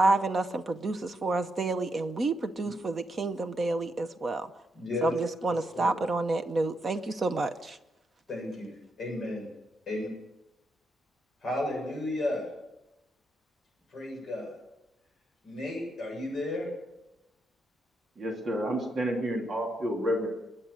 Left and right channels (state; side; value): normal; both; correlation 0.81